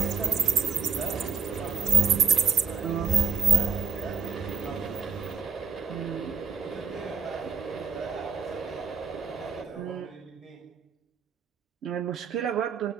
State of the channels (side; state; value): left; quieter; 5.9 dB